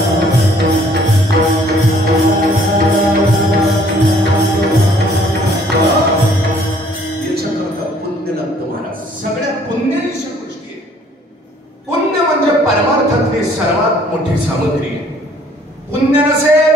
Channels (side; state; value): both; normal; correlation 0.59